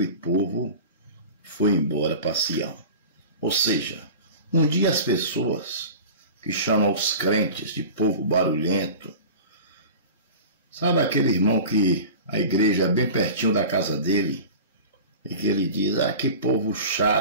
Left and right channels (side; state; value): both; inverted; correlation -0.36